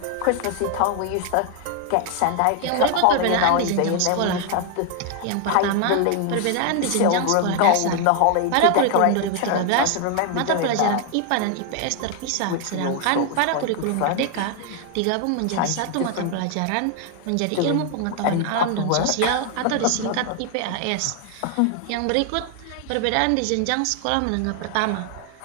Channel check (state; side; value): different; both; correlation 0.00